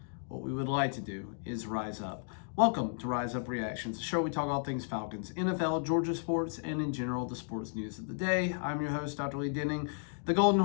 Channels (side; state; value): right; silent; digital silence